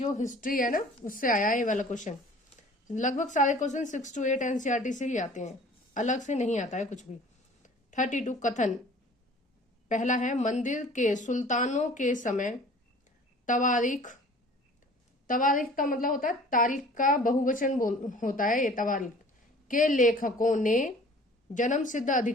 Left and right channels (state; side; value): normal; both; correlation 0.48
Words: हिस्ट्री है ना उससे आया है ये वाला क्वेश्चन। लगभग सारे क्वेश्चन 6 to 8 एनसीईआरटी से ही आते हैं, अलग से नहीं आता है कुछ भी। 32 कथन पहला है, मंदिर के सुल्तानों के समय तवारीख का मतलब होता है तारीख का बहुवचन होता है ये तवारीख के लेखकों ने जन्म सिद्ध